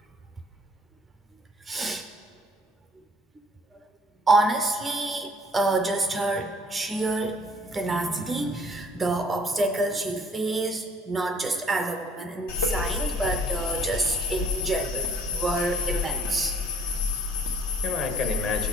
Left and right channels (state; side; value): normal; both; correlation 0.59